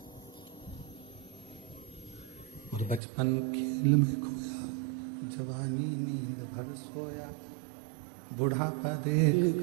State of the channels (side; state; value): left; drops out; at 3.0 s